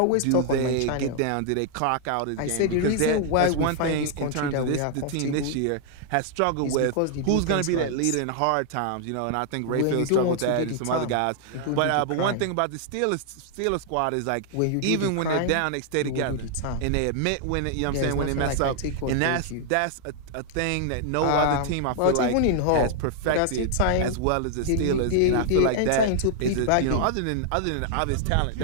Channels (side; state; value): both; different; correlation 0.00